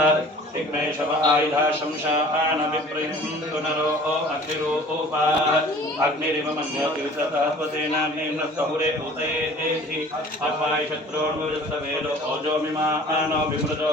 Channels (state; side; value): normal; both; correlation 0.48